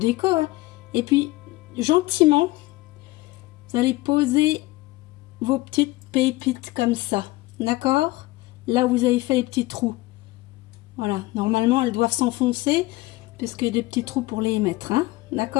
hein. Et puis, gentiment, vous allez poser vos petites pépites comme ça, d'accord? Là où vous avez fait les petits trous. Voilà, normalement, elles doivent s'enfoncer, parce qu'il y a des petits trous pour les mettre, hein,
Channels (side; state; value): right; quieter; 20.0 dB